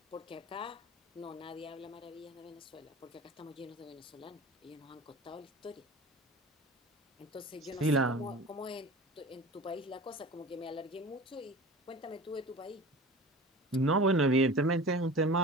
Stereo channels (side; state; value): both; normal; correlation 0.37